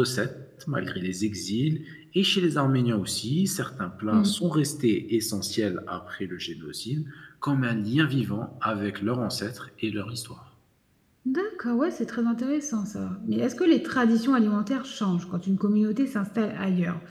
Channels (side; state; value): both; identical; correlation 1.00